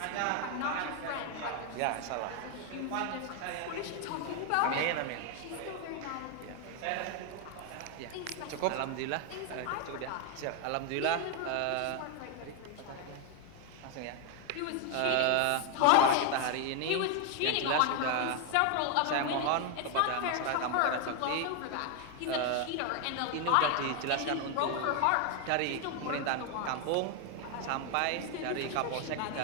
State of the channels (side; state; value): both; different; correlation 0.01